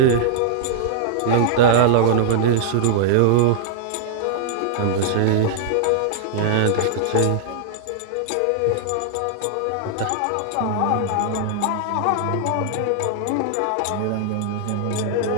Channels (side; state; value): both; different; correlation -0.01